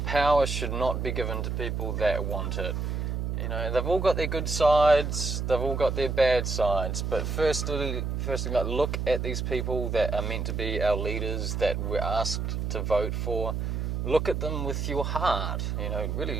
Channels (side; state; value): right; noise; hum, 2 dB below the sound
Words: power should not be given to people that want it. You know, they've all got their good sides, they've all got their bad sides, but firstly, like, look at these people that are meant to be our leaders, that we're asked to vote for. Look at them with your heart, you know,